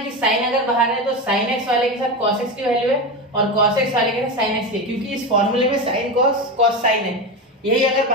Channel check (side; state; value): both; normal; correlation 0.19